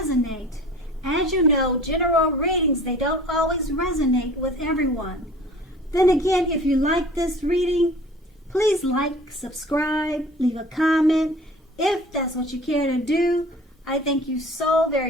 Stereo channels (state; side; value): normal; both; correlation 0.45